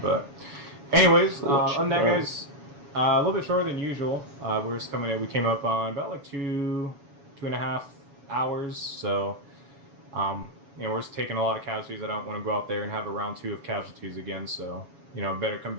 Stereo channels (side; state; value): left; late; 7.2 ms